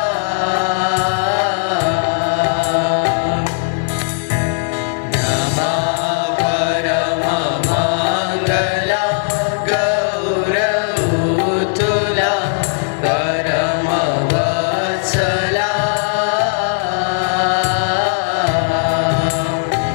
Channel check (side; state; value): right; silent; digital silence